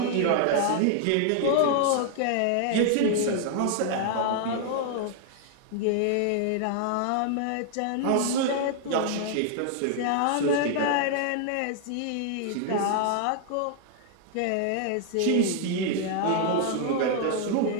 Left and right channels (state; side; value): different; both; correlation 0.00